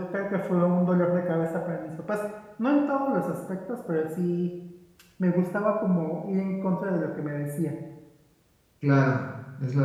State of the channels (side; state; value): both; identical; correlation 1.00